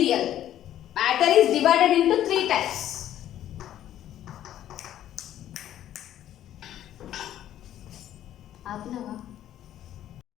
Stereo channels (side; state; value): right; quieter; 11.8 dB